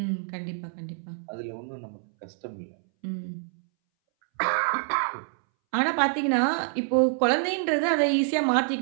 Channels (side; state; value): left; silent; 60 dB below the other